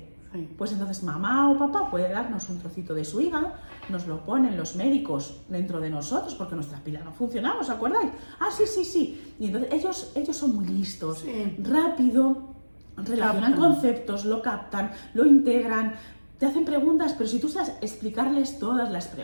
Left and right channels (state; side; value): inverted; both; correlation -1.00